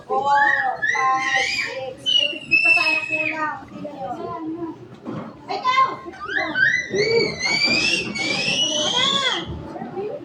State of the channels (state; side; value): identical; both; correlation 1.00